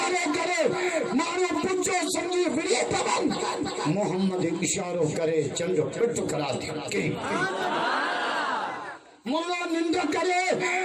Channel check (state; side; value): identical; both; correlation 1.00